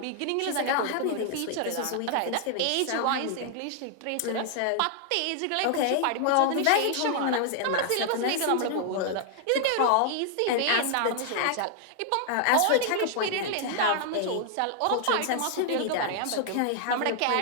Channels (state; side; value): different; both; correlation 0.00